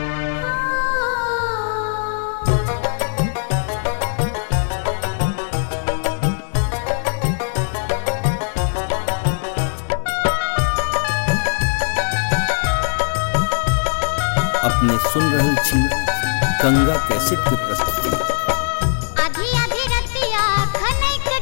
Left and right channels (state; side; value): silent; right; digital silence